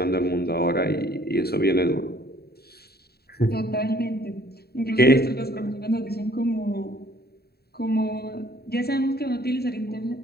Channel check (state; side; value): late; right; 0.46 ms